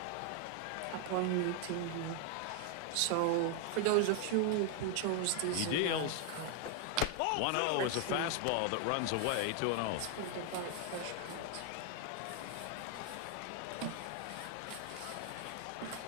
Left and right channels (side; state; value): both; different; correlation 0.00